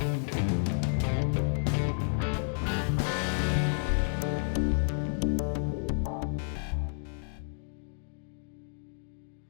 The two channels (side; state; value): right; silent; digital silence